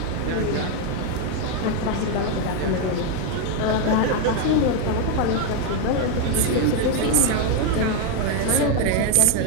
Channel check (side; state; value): both; different; correlation 0.01